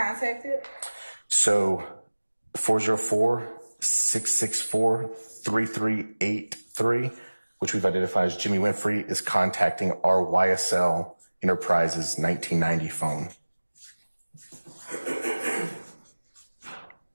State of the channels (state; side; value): inverted; both; correlation -1.00